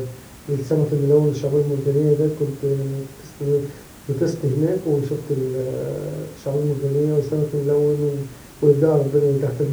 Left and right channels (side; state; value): both; identical; correlation 1.00